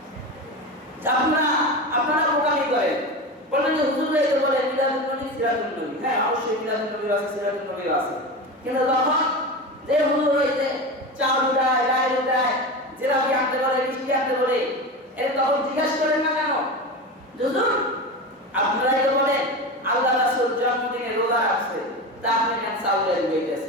আপনারা বোকামি করেন, বলেন যে হুজুর এই তো বলে মিলাদুন নবী, সিরাতুন নবী। হ্যাঁ, অবশ্যই মিলাদুন নবী আছে, সিরাতুন নবী আছে, কিন্তু তখন যে হুজুর হইতে চাউল উঠায়, ডাল উঠায়, জিলাপি আনতে বলে, মিষ্টি আনতে বলে, এর তখন জিজ্ঞাসা করেন না কেন? হুজুর আপনারাই তো বলেন আল্লাহ রাসূল জন্মদিনে রোজা রাখছে, তা আপনি কেন চাউলের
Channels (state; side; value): normal; both; correlation 0.24